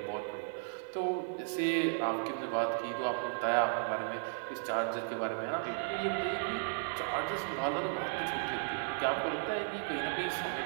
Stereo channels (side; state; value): left; silent; 54 dB below the other